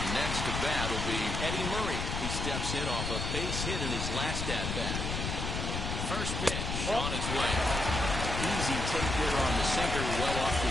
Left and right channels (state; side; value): noise; left; rumble, 2 dB below the sound